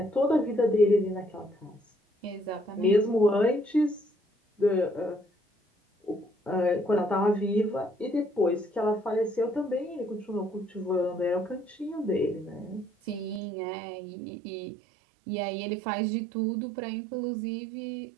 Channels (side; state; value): left; drops out; at 13.4 s